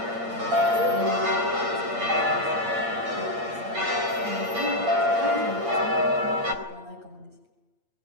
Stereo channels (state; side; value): late; left; 8.6 ms